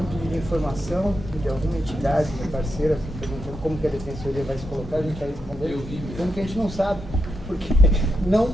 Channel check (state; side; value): normal; both; correlation 0.84